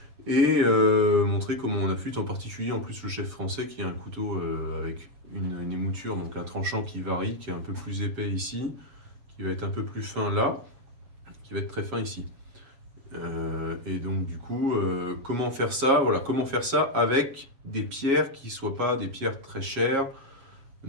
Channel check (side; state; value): left; late; 7.4 ms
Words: Et montrer comment on affûte, en particulier en plus le chef français qui a un couteau avec une émouture, donc un tranchant qui varie, qui est un peu plus épais ici, qui va être un peu plus fin là, qui va être très fin ici. Et donc du coup, comment faire ça? Voilà, comment faire ça avec des pierres qui ne soient pas des pierres très chères.